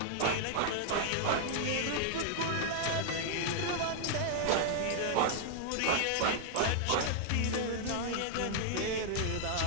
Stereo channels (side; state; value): both; different; correlation -0.01